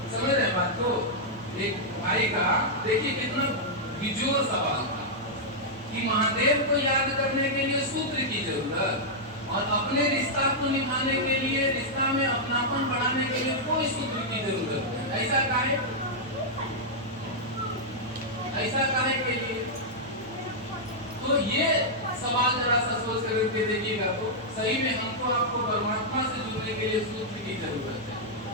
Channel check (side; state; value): both; normal; correlation -0.07